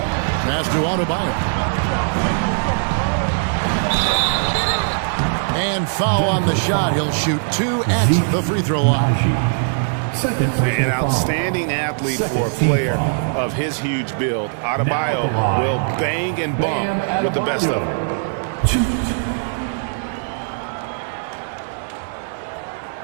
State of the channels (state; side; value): silent; left; digital silence